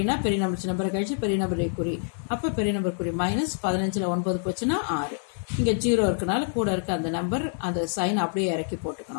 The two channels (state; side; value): silent; right; 57 dB below the other